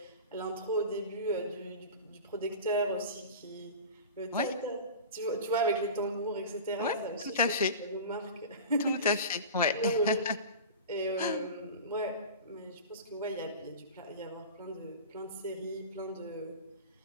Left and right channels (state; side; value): inverted; both; correlation -0.33